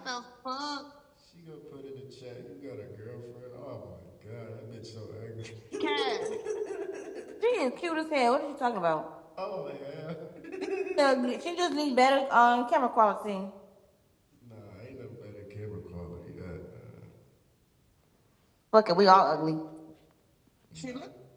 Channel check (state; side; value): identical; both; correlation 1.00